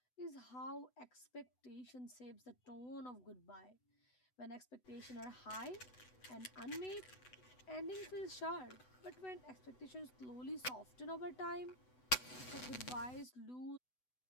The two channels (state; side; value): late; right; 8.0 ms